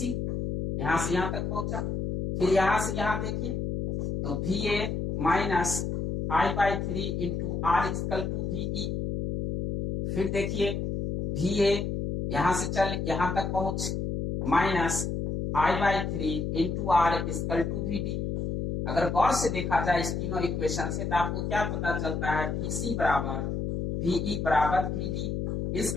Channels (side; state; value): left; noise; hum, 2 dB below the sound